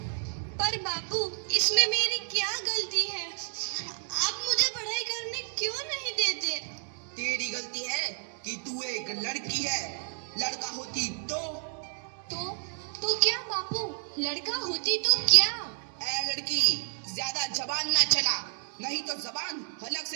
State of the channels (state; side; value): silent; left; 58 dB below the other